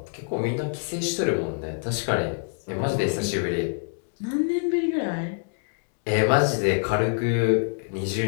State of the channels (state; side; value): silent; right; digital silence